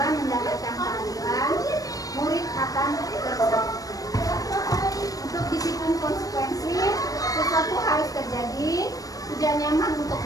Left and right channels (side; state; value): right; late; 0.17 ms